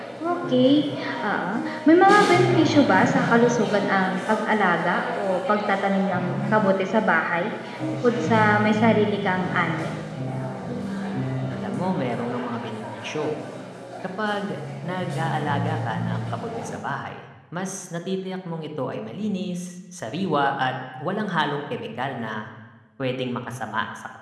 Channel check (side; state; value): both; identical; correlation 1.00